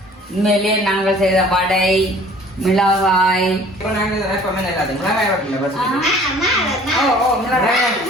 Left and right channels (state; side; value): normal; both; correlation 0.51